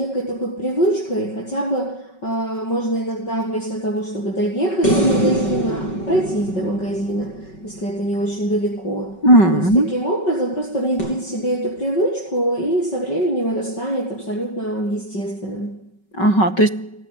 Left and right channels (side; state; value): right; late; 5.3 ms